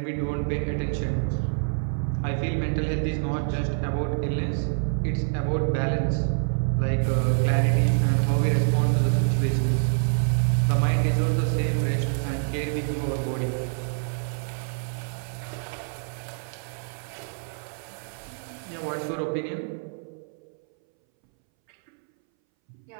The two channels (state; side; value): silent; left; 61 dB below the other